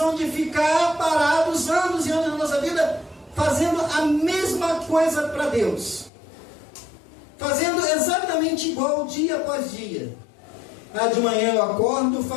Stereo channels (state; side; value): drops out; right; at 6.1 s